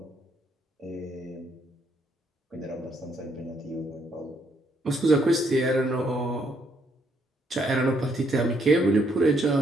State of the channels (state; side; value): normal; both; correlation 0.72